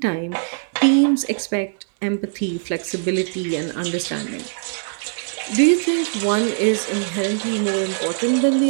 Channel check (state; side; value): silent; left; digital silence